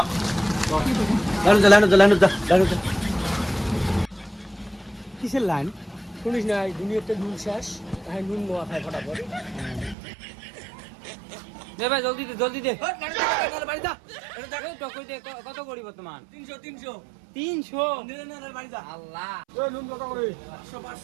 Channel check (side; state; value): left; drops out; at 10.0 s